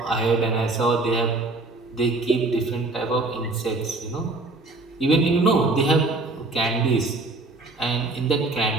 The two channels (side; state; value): left; quieter; 3.2 dB